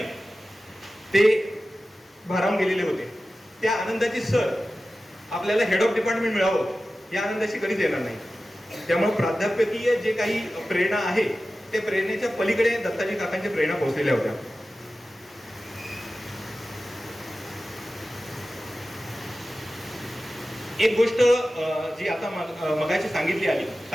ते भारावून गेलेले होते. त्या आनंदाची सर आपल्याला हेड ऑफ डिपार्टमेंट मिळावं या आनंदाशी कधीच येणार नाही. त्यामुळे प्राध्यापकीय जे काही प्रेरणा आहे ते प्रेरणेच्या पलीकडे दत्ताजी काकांच्या प्रेरणा पोहोचलेल्या होत्या. एक गोष्ट जी आता मगाशी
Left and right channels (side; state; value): both; normal; correlation 0.95